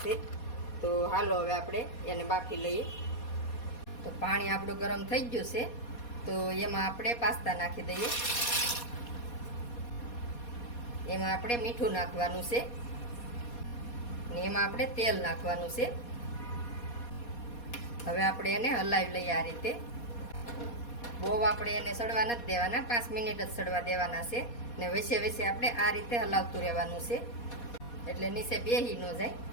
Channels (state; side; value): late; right; 4.2 ms